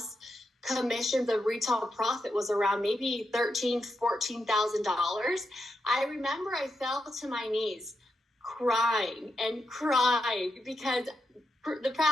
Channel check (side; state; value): both; normal; correlation 0.85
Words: commission, the retail profit was around maybe $13,000, $14,000. I remember I fell to my knees crying because for the